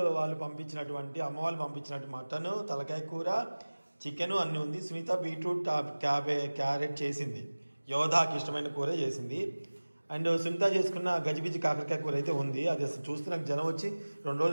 వాళ్ళు పంపించినటువంటి అమ్మ వాళ్ళు పంపించినట్టు మటన్, తలకాయ కూర, చికెన్ అన్నీ ఉంది. సునీత బీట్రూట్ క్యారెట్ చేసింది. యోధాకి ఇష్టమైన కూర చేసింది. అండ్ సునీత చేసుకున్న గజిబిజి కాకరకాయ కూర అయితే ఉంది. అది అసలు చూస్తే నాకు జనం వచ్చి 2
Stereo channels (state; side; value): inverted; both; correlation -1.00